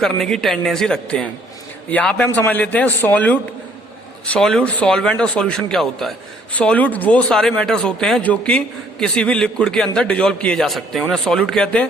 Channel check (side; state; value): both; normal; correlation 0.62